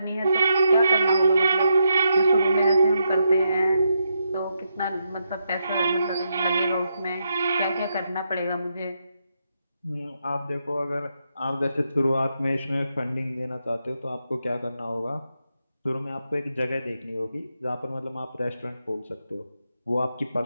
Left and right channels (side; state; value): both; inverted; correlation -0.81